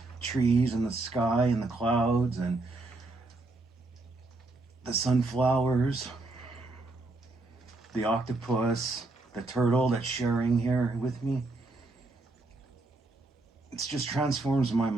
trees and the sky and the clouds and the sunflowers, the octopus, the turtle that's sharing here with me. It just transforms my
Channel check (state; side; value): quieter; left; 3.2 dB